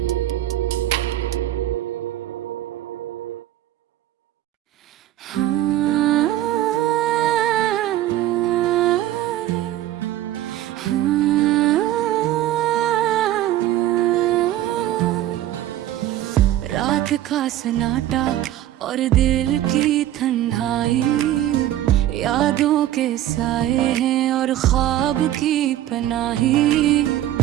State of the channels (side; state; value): left; quieter; 13.2 dB